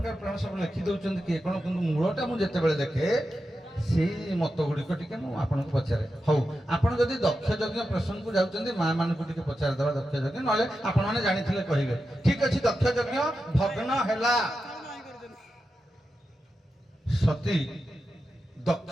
ପୁରାଣ ସବୁ ଲେଖି ଦଉଛନ୍ତି କିଏ କ'ଣ, କିନ୍ତୁ ମୂଳଟା ମୁଁ ଯେତେବେଳେ ଦେଖେ ସେଇ ମତ ଗୁଡ଼ିକ ଟିକେ ମୁଁ ଆପଣଙ୍କୁ ପଚାରେ। ହଉ, ଆପଣ ଯଦି ଦକ୍ଷ ଯଜ୍ଞ ପ୍ରସଙ୍ଗକୁ ଯାଉଛନ୍ତି, ମା ମାନଙ୍କୁ ଟିକେ ପଚାରିଦେବା ଦକ୍ଷ ଯଜ୍ଞ, ନହେଲେ ଆପଣମାନେ ଜାଣିଥିଲେ କହିବେ। ଠିକ ଅଛି, ଦକ୍ଷ ଯଜ୍ଞ ଭଗ୍ନ ହେଲା। ସତୀ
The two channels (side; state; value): both; normal; correlation 0.90